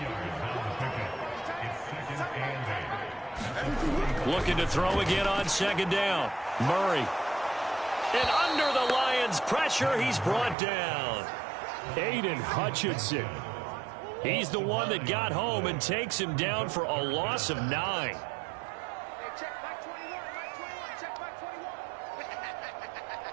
Looking to throw again on 2nd down. Murray. And under the Lions' pressure, he's brought down. Aiden Hutchinson. He's the one that got home and takes him down for a loss of 9.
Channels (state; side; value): drops out; left; at 10.6 s